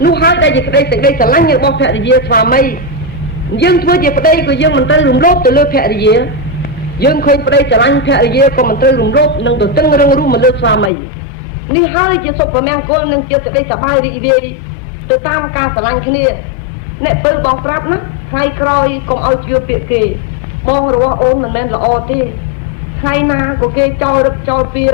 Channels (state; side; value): drops out; right; at 10.9 s